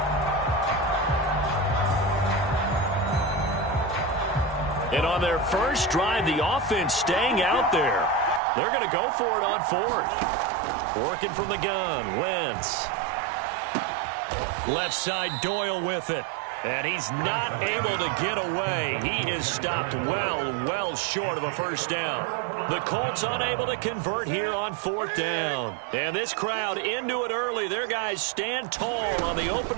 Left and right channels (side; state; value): left; drops out; at 8.4 s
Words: And on their first drive, the offense staying out there. They're going to go for it on 4th. Working from the gun, Wentz. Left side, Doyle with it. And he's not able to get away. He is stopped well short of a first down. The Colts unable to convert here on 4th down. And this crowd into it early. Their guys stand tall on the